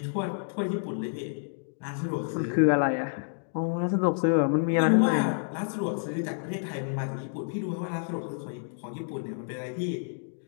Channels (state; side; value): silent; right; digital silence